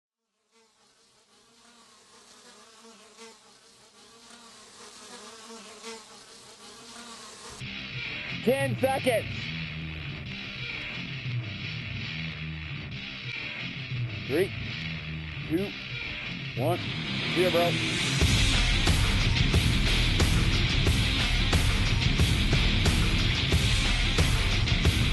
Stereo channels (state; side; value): identical; both; correlation 1.00